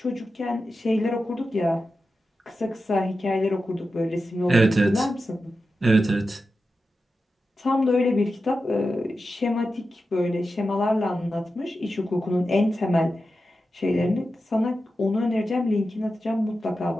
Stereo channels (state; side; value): normal; both; correlation 0.91